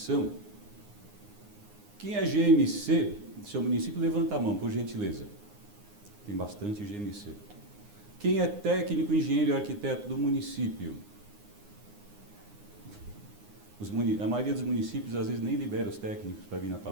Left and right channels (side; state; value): left; late; 9.7 ms